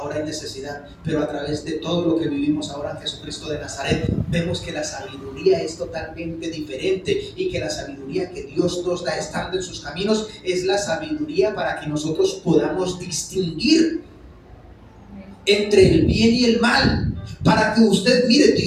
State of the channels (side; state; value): both; identical; correlation 1.00